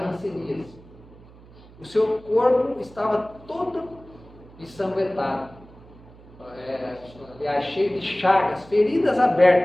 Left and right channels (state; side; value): noise; right; hum, 22 dB below the sound